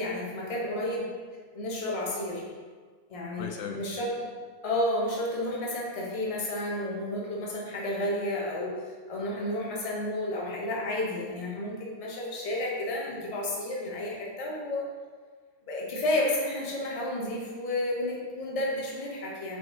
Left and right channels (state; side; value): late; left; 1.6 ms